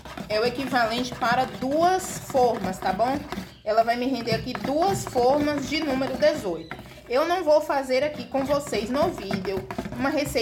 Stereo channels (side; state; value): both; identical; correlation 1.00